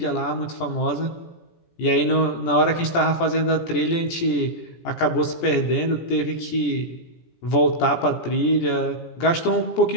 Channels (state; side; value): late; right; 17 ms